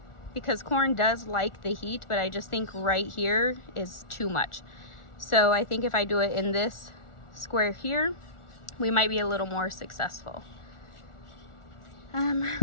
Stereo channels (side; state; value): right; late; 1.4 ms